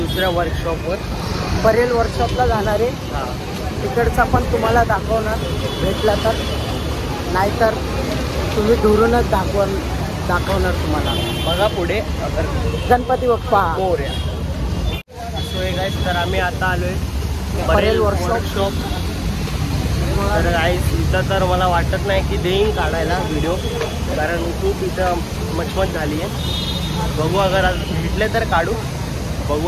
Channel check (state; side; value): identical; both; correlation 1.00